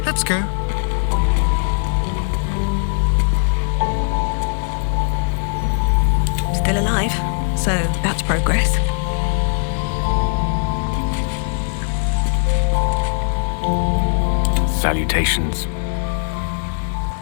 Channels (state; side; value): silent; right; digital silence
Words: Let's go. Still alive, so that's progress. Salutations.